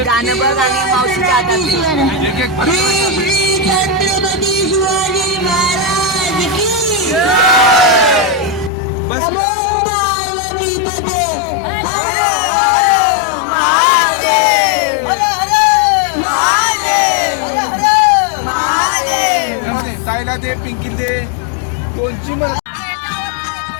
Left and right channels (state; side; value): drops out; right; at 8.7 s